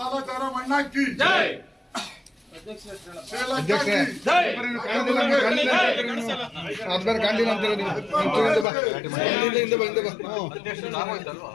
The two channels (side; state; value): right; drops out; at 8.7 s